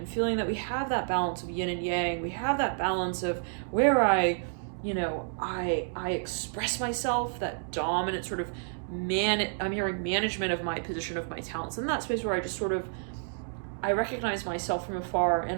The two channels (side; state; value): left; silent; digital silence